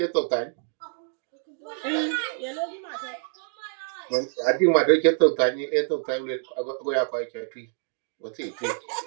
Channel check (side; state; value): left; silent; 61 dB below the other